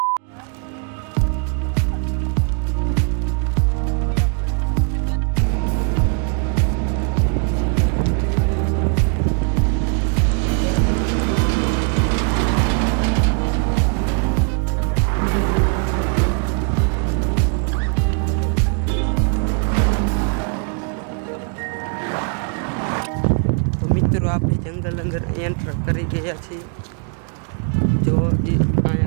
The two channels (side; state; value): left; quieter; 38.7 dB